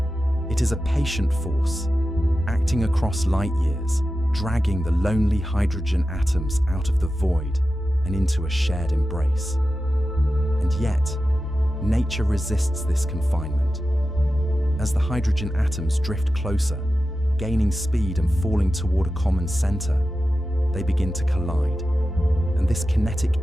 It is a patient force, acting across light years, dragging the lonely hydrogen atoms out of the void and into a shared embrace. And yet, nature resists this confinement. As the hydrogen atoms drift closer, gaining speed and falling toward a common center, they begin to collide, and this kinetic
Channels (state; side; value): normal; both; correlation 0.93